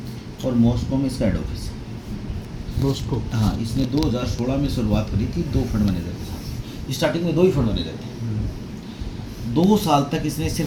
और मॉस्को में इसका हेड ऑफिस है। मॉस्को। हाँ, इसने 2016 में शुरुआत करी थी 2 फंड मैनेजर के साथ। स्टार्टिंग में 2 ही फंड मैनेजर थे। 2 साल तक इसने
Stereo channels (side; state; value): both; identical; correlation 1.00